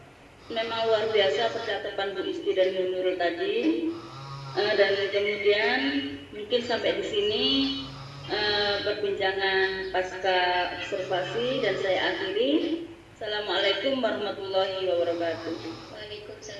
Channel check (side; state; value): both; identical; correlation 1.00